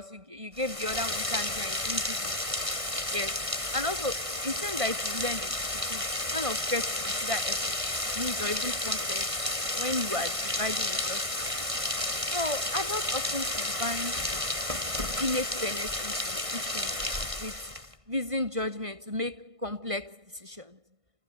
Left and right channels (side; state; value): left; late; 1.5 ms